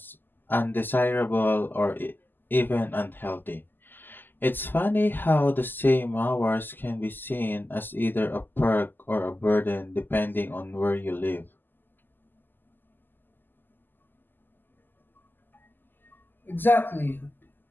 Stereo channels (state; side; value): late; right; 0.091 ms